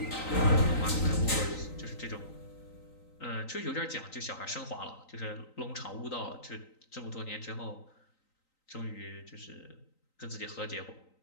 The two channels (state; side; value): late; right; 3.9 ms